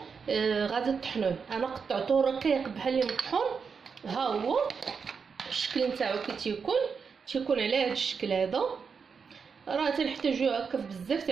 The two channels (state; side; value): quieter; left; 5.8 dB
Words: غادي تطحنوه، انا قطعته رقيق بحال المطحون. ها هو الشكل نتاعو كي تيكون على هذا الشكل هذا. راه تنحتاجو هكا بزاف